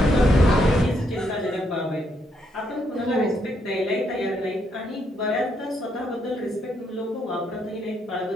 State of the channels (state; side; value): normal; both; correlation 0.76